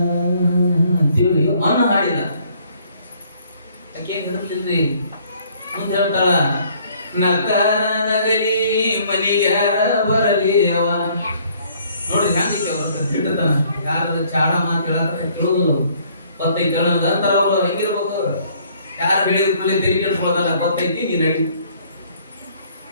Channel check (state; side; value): inverted; both; correlation -0.61